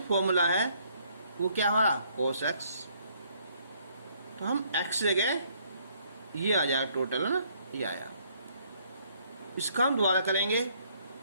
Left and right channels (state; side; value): inverted; both; correlation -0.66